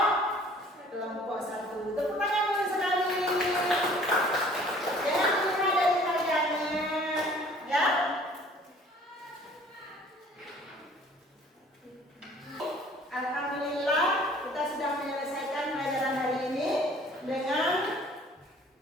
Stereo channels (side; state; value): both; normal; correlation 0.53